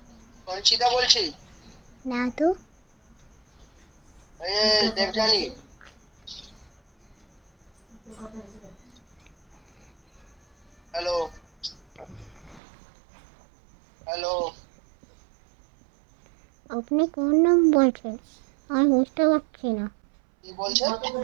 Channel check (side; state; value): left; drops out; at 12.6 s